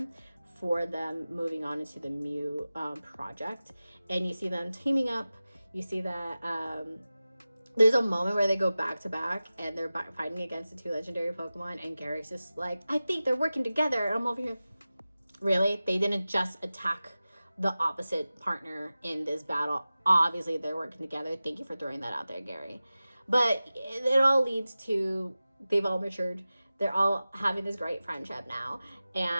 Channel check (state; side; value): inverted; both; correlation -0.96